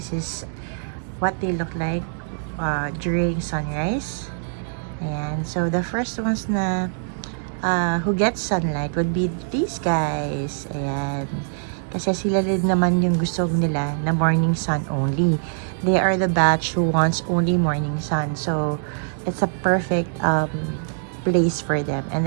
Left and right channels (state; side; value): silent; left; digital silence